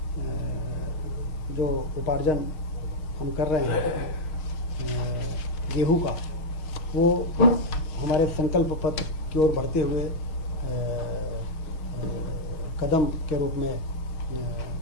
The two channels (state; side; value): late; right; 6.5 ms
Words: जो उपार्जन हम कर रहे हैं गेहूं का, वो हमारे संकल्प पत्र की ओर बढ़ते हुए कदम के रूप में